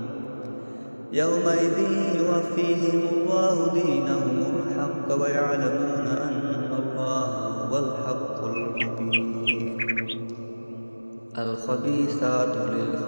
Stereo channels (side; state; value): both; inverted; correlation -1.00